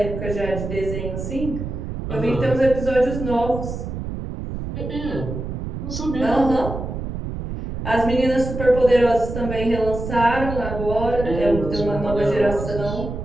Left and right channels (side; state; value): right; noise; rumble, 6 dB below the sound